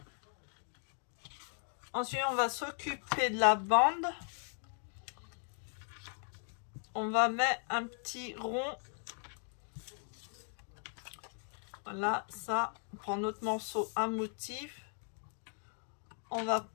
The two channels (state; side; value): silent; right; 53 dB below the other